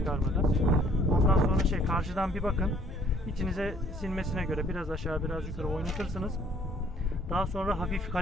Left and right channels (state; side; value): normal; both; correlation 0.59